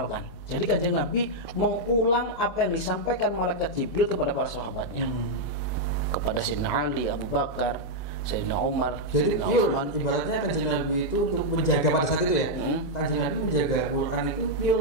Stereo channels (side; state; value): right; late; 2.0 ms